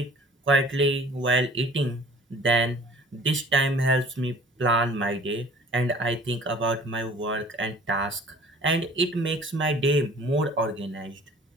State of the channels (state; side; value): normal; both; correlation 0.49